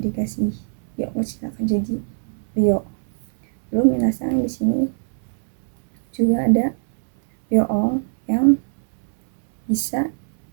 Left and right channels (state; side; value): silent; left; digital silence